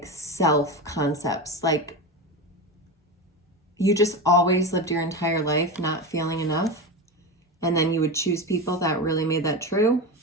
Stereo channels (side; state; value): both; normal; correlation 0.21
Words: self concepts. Like, you just always lived your entire life not feeling enough, and then you would choose people that really made that true,